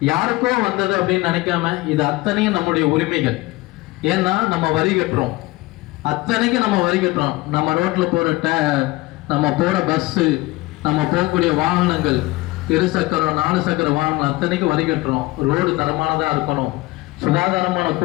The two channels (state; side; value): quieter; right; 20.6 dB